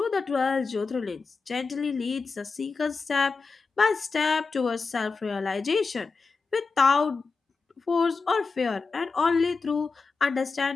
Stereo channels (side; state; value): right; quieter; 4.5 dB